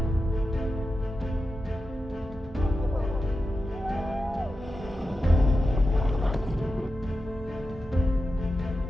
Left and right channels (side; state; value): both; normal; correlation 0.91